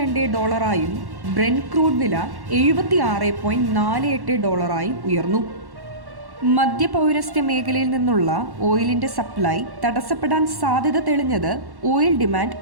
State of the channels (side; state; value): left; late; 1.1 ms